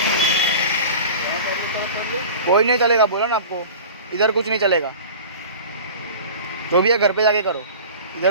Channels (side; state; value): both; inverted; correlation -0.37